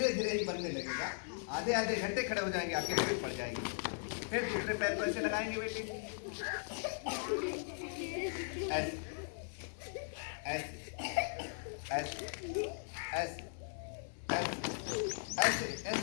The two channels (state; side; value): silent; right; digital silence